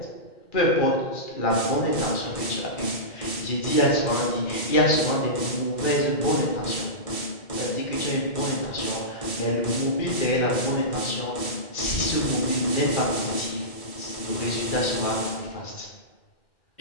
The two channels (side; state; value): right; late; 2.2 ms